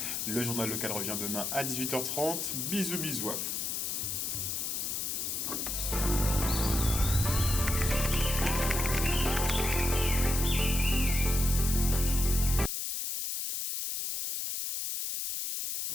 Le journal local revient demain à 18h30. Bisous, bisous.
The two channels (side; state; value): left; noise; hiss, 2 dB below the sound